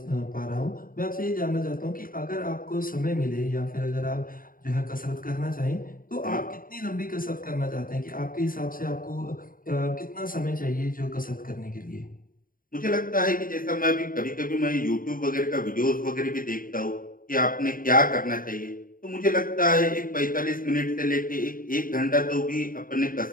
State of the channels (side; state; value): right; late; 0.41 ms